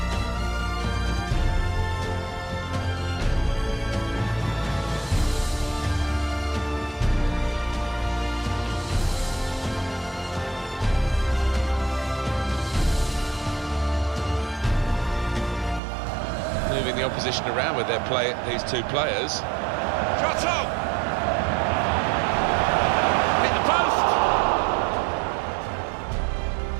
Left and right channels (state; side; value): drops out; left; at 15.8 s